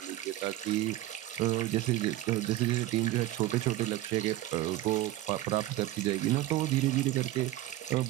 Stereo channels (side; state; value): left; quieter; 15.4 dB